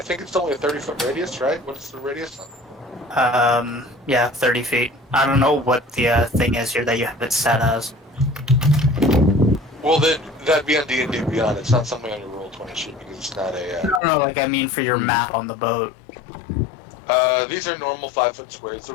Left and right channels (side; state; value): right; drops out; at 14.0 s